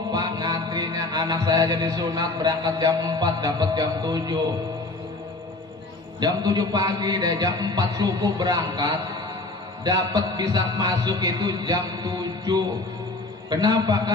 Pak, ngantrinya. Anak saya jadi sunat berangkat jam 4, dapat jam 7. Jam 7 pagi deh, jam 4 subuh berangkat. Dapat bisa masuk itu jam 7. Kenapa?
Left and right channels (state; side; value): quieter; right; 3.1 dB